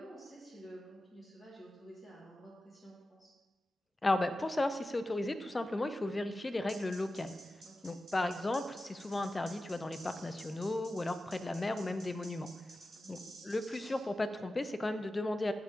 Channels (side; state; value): both; normal; correlation 0.93